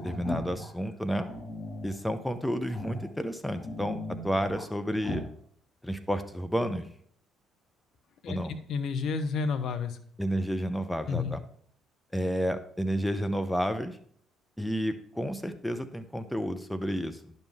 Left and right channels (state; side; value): normal; both; correlation 0.87